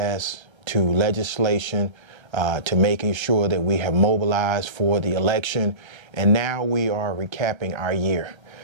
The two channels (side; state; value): left; late; 1.3 ms